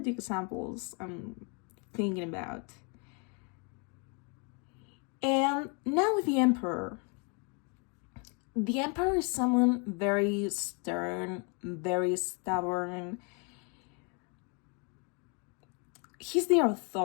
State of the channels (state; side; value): quieter; right; 35.1 dB